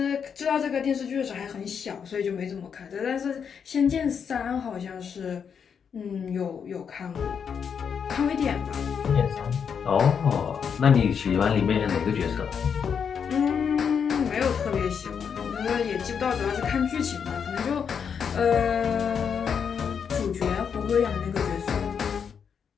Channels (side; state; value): right; quieter; 7.0 dB